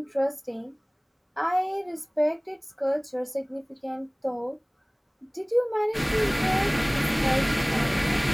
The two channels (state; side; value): identical; both; correlation 1.00